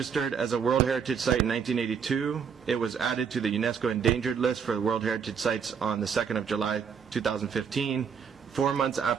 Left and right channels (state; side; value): quieter; left; 6.8 dB